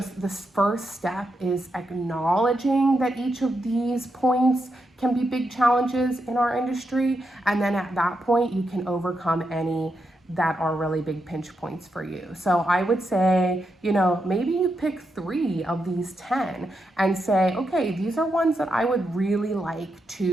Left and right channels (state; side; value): normal; both; correlation 0.84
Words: this first step is acknowledging that each of these points can be big challenges in our industry. And then at that point, you can overcome any that are really big pinch points for you. So I would say, maybe you pick 3 of these 10 and say, okay, these are ones that I would really like